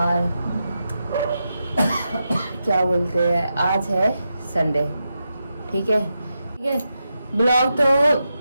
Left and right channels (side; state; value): both; inverted; correlation -0.87